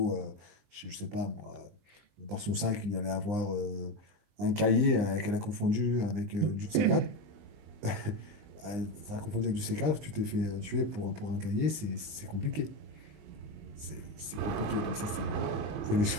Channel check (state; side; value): late; left; 19 ms